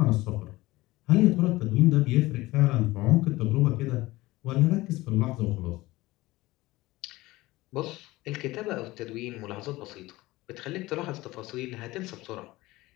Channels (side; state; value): right; quieter; 19.2 dB